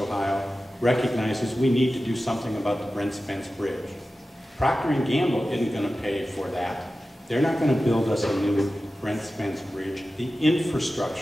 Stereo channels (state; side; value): normal; both; correlation 0.94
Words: recognizes we need to do something about the Brent Spence Bridge. Procter & Gamble isn't going to pay for that. They're not going to build us a new Brent Spence Bridge. The